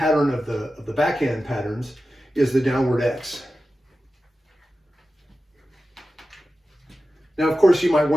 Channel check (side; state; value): both; normal; correlation 0.93